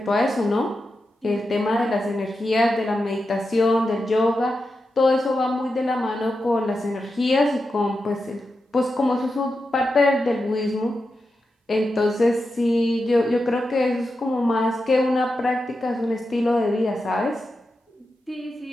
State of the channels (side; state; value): both; normal; correlation 0.89